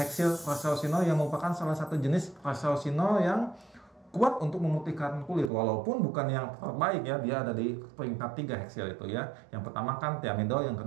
Resorcinol yang merupakan salah satu jenis Resorcinol yang kuat untuk memutihkan kulit. Walaupun bukan yang terbaik ya, dia ada di peringkat 3 heksil itu ya. Yang pertama kan thiamidol, yang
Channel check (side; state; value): left; drops out; at 5.5 s